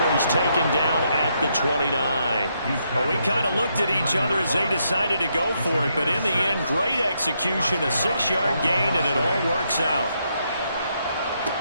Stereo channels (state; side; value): inverted; both; correlation -0.78